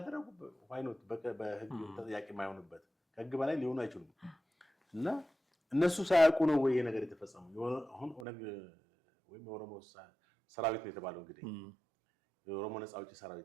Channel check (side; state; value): left; drops out; at 8.2 s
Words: ዋይኖት በህግ ተጠያቂ የማይሆንበት ከህግ በላይ ሊሆኑ አይችሉም። እና እነሱ ሳያውቁ ነው ወይ ይሄ ነገር የተፈጸመው? አሁን ኦነግ ወይም የኦሮሞ ሰራዊት ነው የተባለው እንግዲህ የኦሮሞ ነፃ አውጪ